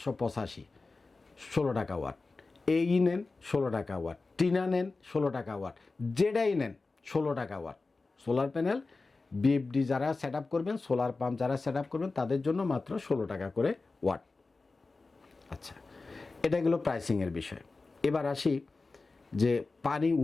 16 টাকা ওয়াট। এই নেন 16 টাকা ওয়াট, টিনা নেন 16 টাকা ওয়াট, যেটাই নেন 16 টাকা ওয়াট। সোলার প্যানেল বিএফডি যারা সেট আপ করবেন, সোলার পাম্প যারা সেট আপ করবেন তাদের জন্য মাত্র 16 টাকা করে ওয়াট। আচ্ছা, এটা গেলো প্রাইসিংয়ের বিষয়। এবার আসি যে পানি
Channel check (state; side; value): quieter; right; 3.7 dB